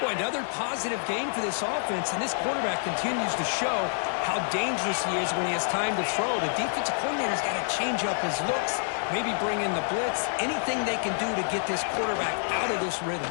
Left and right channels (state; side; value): silent; right; digital silence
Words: Boy, another positive game for this offense, and this quarterback continues to show how dangerous he is when he has time to throw. The defensive coordinator's got to change up his looks, maybe bring in the blitz, anything they can do to get this quarterback out of this rhythm.